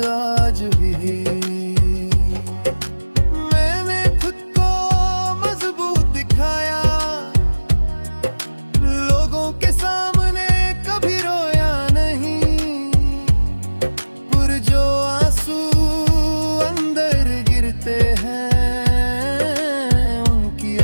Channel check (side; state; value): both; inverted; correlation -1.00